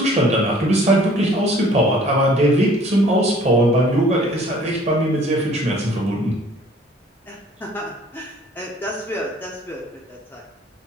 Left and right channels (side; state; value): both; normal; correlation 0.54